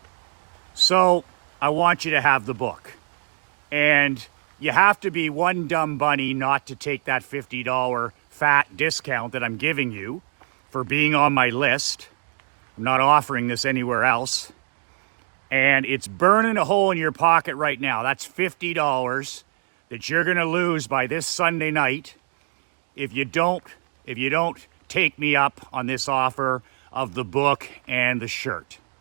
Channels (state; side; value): silent; left; digital silence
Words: So I want you to have the book. And you have to be one dumb bunny not to take that $50 fat discount that I'm giving you for being on my list. I'm not offering this anywhere else. And it's burning a hole in your pocket right now. That's $50 that you're going to lose by this Sunday night if you don't take me up on this offer of the book and the shirt.